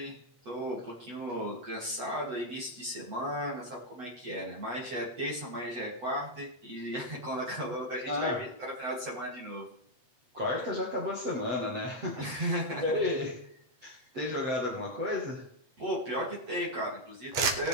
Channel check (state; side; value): late; left; 8.1 ms